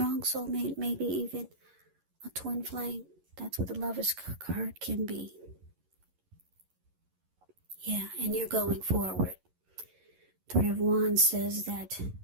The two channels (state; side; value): late; left; 11 ms